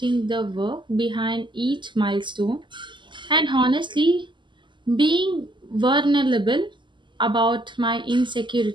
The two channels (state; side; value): late; left; 0.23 ms